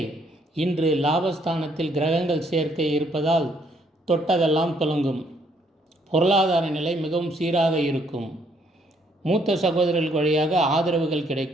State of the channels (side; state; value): both; normal; correlation 0.68